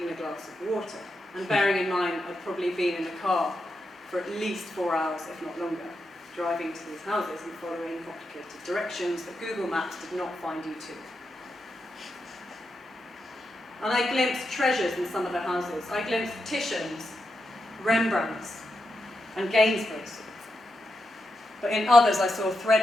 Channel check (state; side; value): normal; both; correlation 0.86